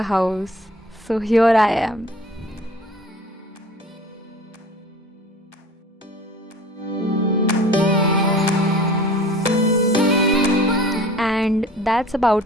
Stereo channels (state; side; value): normal; both; correlation 0.45